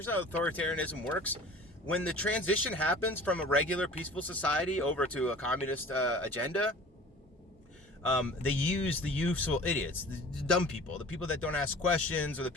how authoritarianism works. When the transition happens from a regular peaceful society over to a communist agenda, they use the useful idiots, the dumb people, the people that don't ask questions, or the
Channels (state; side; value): normal; both; correlation 0.43